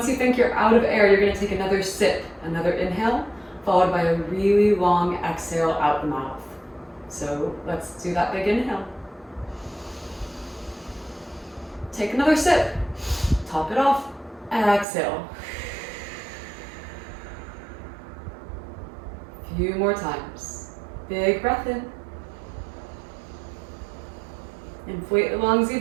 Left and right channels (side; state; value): left; drops out; at 14.9 s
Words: think you're out of air, you're going to take another sip, another inhale, followed by a really long exhale out the mouth. So let's do that big inhale. Take another sip, top it off, exhale. Few more times. Big breath in. Inflate the lungs